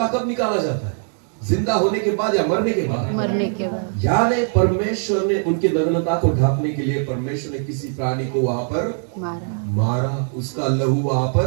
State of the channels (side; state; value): left; silent; 65 dB below the other